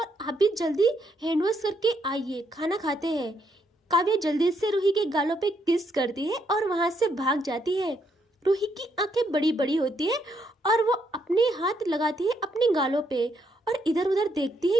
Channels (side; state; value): both; normal; correlation 0.75